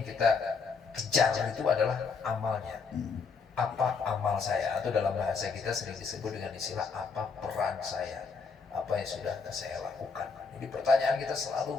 kita kejar itu adalah amalnya. Apa amal saya? Atau dalam bahasa kita sering disebut dengan istilah apa peran saya? Apa yang sudah saya lakukan? Jadi pertanyaan kita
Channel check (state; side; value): quieter; right; 5.1 dB